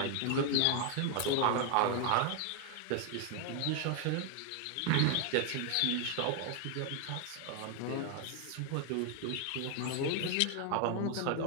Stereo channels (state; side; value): different; both; correlation 0.01